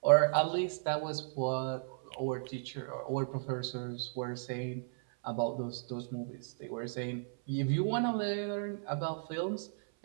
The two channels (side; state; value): left; silent; 54 dB below the other